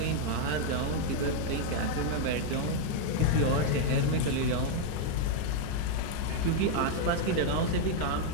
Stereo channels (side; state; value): both; different; correlation 0.00